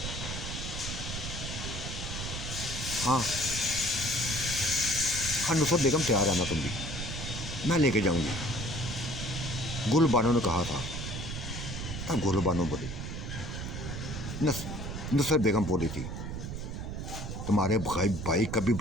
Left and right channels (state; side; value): noise; right; rumble, 6 dB below the sound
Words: हाँ हाँ नुसरत बेगम तैयार है ना, तुम भी, मैं लेके जाऊंगी। गुल बानो ने कहा था। तब गुल बानो बोली, नुसरत बेगम बोली थी, तुम्हारे भाई कभी